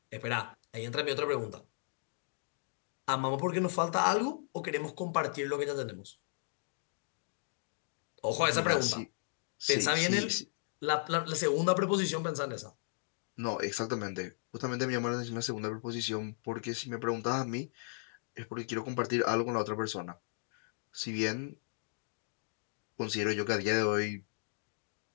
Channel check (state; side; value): silent; right; digital silence